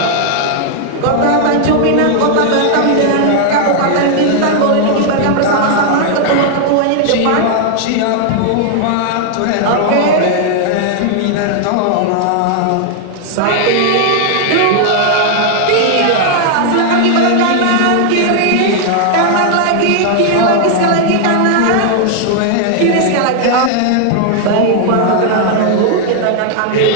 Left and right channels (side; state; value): both; different; correlation 0.00